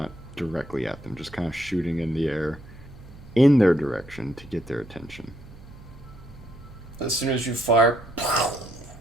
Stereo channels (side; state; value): right; noise; hum, 19 dB below the sound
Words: directly at them. Just kind of shooting in the air in their direction to get their attention. As soon as you fire,